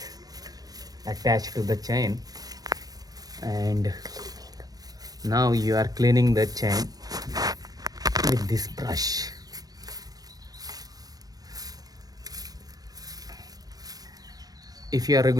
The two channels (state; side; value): late; left; 0.18 ms